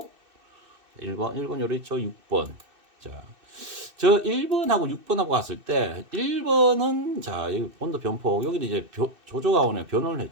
1번 요래 있죠. 6번. 자. 저 1번하고 6번하고 갔을 때 1번은 자 여기 온도 변폭 여기는 이제 조조가온에 변원을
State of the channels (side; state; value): left; late; 2.6 ms